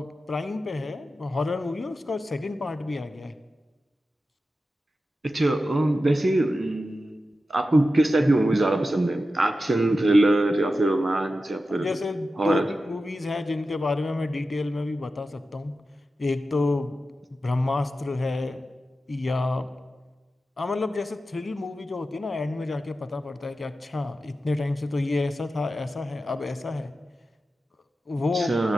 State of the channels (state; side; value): normal; both; correlation 0.92